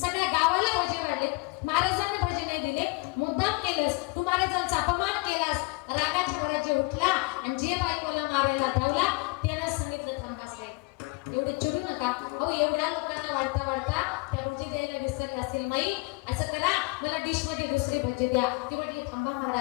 सगळ्या गावाला भोजे वाढले, महाराजांना भोजे नाही दिले, मुद्दाम केलंस तू, महाराजांचा अपमान केलास. रागाच्या भरात जे उठला आणि जे बाई मला मारायला धावला त्यानं सांगितलं थांबास रे, एवढे चिडू नका. अहो एवढ्या लोकांना वाढता वाढता त्या भोजे द्यायला विसरले असेल माई, असं करा मला डिश मध्ये दुसरे भोजे द्या. ते म्हटले थांबा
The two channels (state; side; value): quieter; right; 28.3 dB